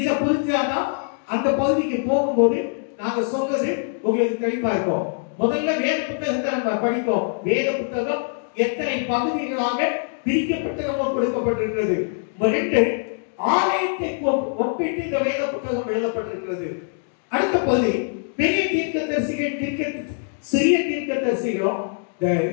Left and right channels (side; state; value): right; silent; 63 dB below the other